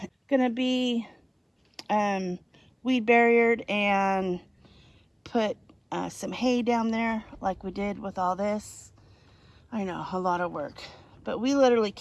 gonna be weed barriered and put some hay down there like we did with all this. I know, a lot of work. But we literally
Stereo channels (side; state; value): both; identical; correlation 1.00